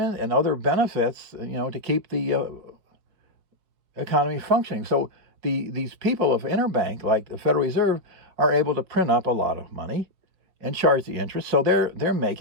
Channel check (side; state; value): left; late; 5.1 ms